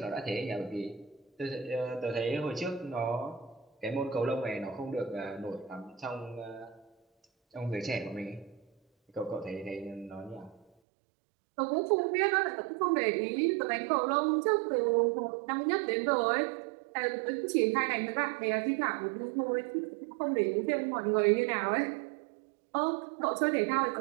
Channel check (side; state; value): left; drops out; at 10.7 s